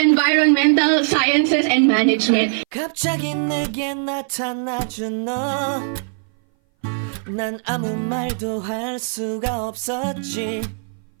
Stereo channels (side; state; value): left; silent; 60 dB below the other